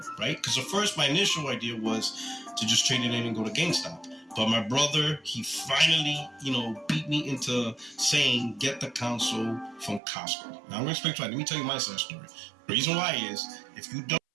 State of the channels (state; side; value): drops out; left; at 10.0 s